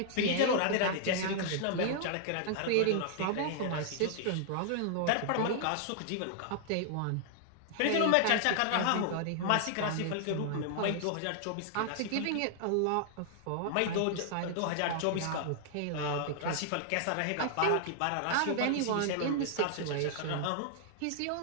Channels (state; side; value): different; both; correlation -0.01